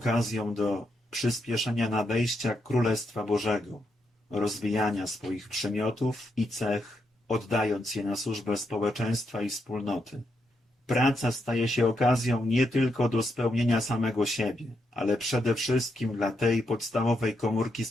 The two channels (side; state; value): both; normal; correlation 0.81